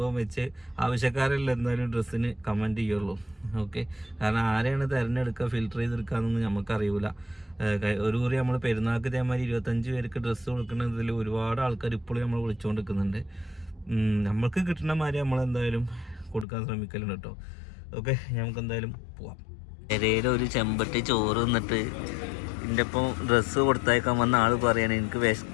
വെച്ച് ആവശ്യക്കാരെല്ലാം എന്തായാലും ഡ്രസ്സിന് കമൻറ്റ് ചെയ്യുള്ളൂ. ഓക്കെ, കാരണം ആരെയാണ് തിരഞ്ഞെടുക്കുക ഫിൽറ്റർ ചെയ്തെടുക്കുക എന്നൊന്നും നമുക്കറിയില്ല. ഒരു കുറി നമ്മൾ പെരുന്നാൾക്ക് ഇതേമാതിരി 25 പേർക്ക് ഡ്രസ്സ് കൊടുക്കുന്നതിൽ ഒരുപാട് ആൾക്കാർ ഇപ്പോഴും നമ്മൾ വിളിച്ചുകൊണ്ടിരിക്കുന്നുണ്ട്. നമ്മൾക്ക് കിട്ടുന്ന മാതിരി നമ്മളെന്തായാലും കൊടുക്കാൻ ശ്രമിക്കലുണ്ട് കേട്ടോ. ഓക്കെ, നമുക്ക് എന്തായാലും പോവാം. പെരയിൽ ഒരു ചെമ്പട്ടി ചോറ് തിന്നിട്ട് എൻ്റെ ഒപ്പം ഡ്രസ്സ് കൊടുത്തയക്കാൻ വന്ന ആൾ പറയണേ എനിക്ക്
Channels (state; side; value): drops out; right; at 16.4 s